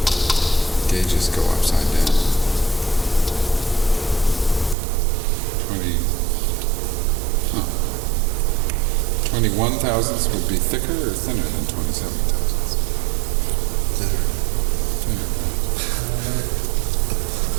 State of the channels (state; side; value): drops out; left; at 4.8 s